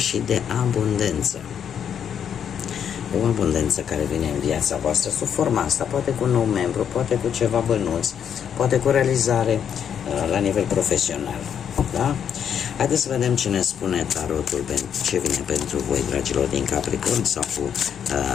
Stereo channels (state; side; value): quieter; right; 8.4 dB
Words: de abundență. O abundență care vine în viața voastră sub forma asta, poate cu un nou membru, poate cu ceva bănuți, poate cu realizare la nivel profesional. Da? Haideți să vedem ce ne spune tarotul, ce vine pentru voi, dragilor din Capricorn, sau cu